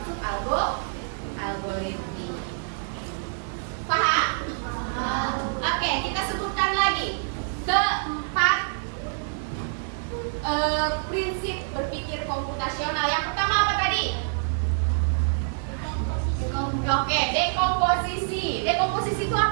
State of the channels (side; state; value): left; silent; digital silence